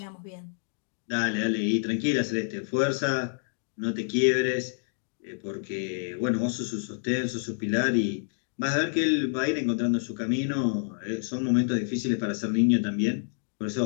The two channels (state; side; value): silent; right; digital silence